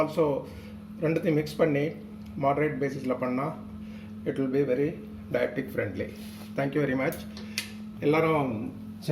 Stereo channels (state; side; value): identical; both; correlation 1.00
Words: also ரெண்டுத்தையும் மிக்ஸ் பண்ணி moderate basisல பண்ணா it will be very diabetic friendly. Thank you very much. எல்லாரும்